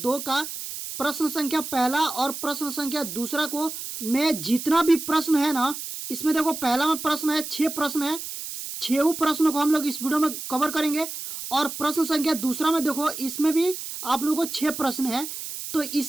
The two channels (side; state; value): right; noise; hiss, 8 dB below the sound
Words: का प्रश्न संख्या पहला और प्रश्न संख्या दूसरा को मैं जितना भी प्रश्न है ना, इसमें देखो पहला में प्रश्न है, 6 प्रश्न है, 6 प्रश्नों को हम लोग इस वीडियो में कवर करेंगे। और प्रश्न संख्या दूसरा में देखो, इसमें भी आप लोगों को 6 प्रश्न है, तो